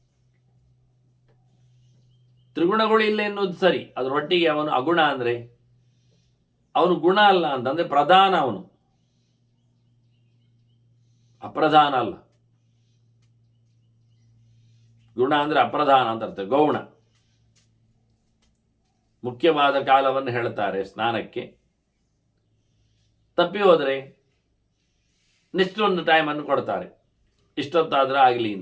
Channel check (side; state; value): both; identical; correlation 1.00